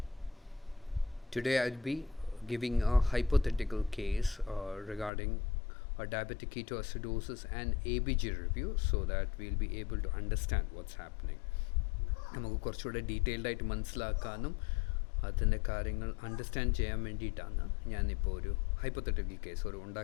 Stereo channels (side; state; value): right; drops out; at 5.1 s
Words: Today I'll be giving a hypothetical case regarding a diabetic ketoacidosis and ABG review so that we'll be able to understand what's happening. നമുക്ക് കുറച്ചുകൂടെ detailed ആയിട്ട് മനസ്സിലാക്കാനും അതിൻ്റെ കാര്യങ്ങൾ understand ചെയ്യാൻ വേണ്ടിയിട്ടാണ് ഞാനിപ്പോൾ ഒരു ഹൈപ്പോത്തറ്റിക്കൽ കേസ്